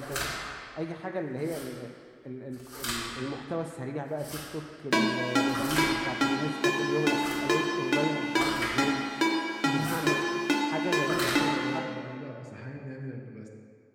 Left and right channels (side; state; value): both; identical; correlation 1.00